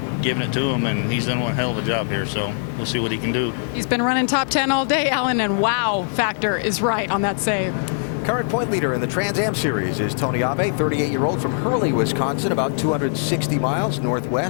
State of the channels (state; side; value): silent; right; digital silence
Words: giving it to him, and he's done one hell of a job here, so we'll see what he can do. He's been running top 10 all day, Alan, and wow factor is right on that save. Current point leader in the Trans Am Series is Tony Ave, 38-year-old from Hurley, Wisconsin, about 260 miles